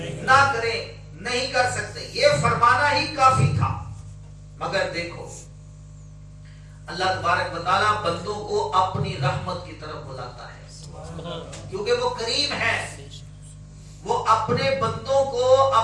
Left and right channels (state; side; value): identical; both; correlation 1.00